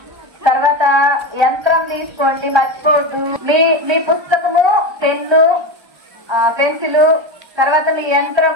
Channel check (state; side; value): late; left; 1.3 ms